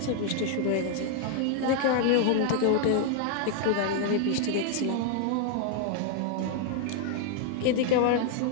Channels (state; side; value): different; both; correlation 0.00